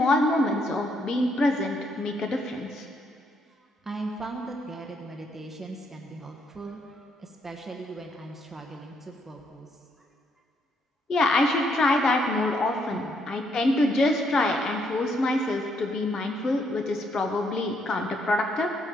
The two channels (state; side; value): normal; both; correlation 0.73